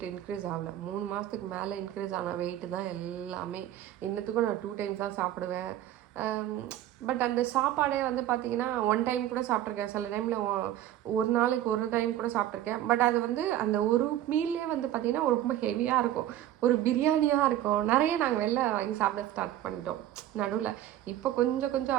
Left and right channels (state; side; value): quieter; left; 12.6 dB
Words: இன்க்ரீஸ் ஆகலை. 3 மாதத்துக்கு மேலே இன்க்ரீஸ் ஆன வெயிட்டு தான் எல்லாமே. இன்னத்துக்கும் நான் 2 டைம்ஸ் தான் சாப்பிடுவேன். பட் அந்த சாப்பாடே வந்து பார்த்திங்கன்னா 1 டைம் கூட சாப்பிட்ருக்கேன். சில டைமில் ஒரு நாளைக்கு 1 டைம் கூட சாப்பிட்ருக்கேன். பட் அது வந்து அந்த ஒரு மீல்லே வந்து பார்த்திங்கன்னா ரொம்ப ஹெவியாக இருக்கும். ஒரு பிரியாணியாக இருக்கும். நிறைய நாங்கள் வெளில வாங்கி சாப்பிட ஸ்டார்ட் பண்ணிட்டோம் நடுவில். இப்போ கொஞ்சம்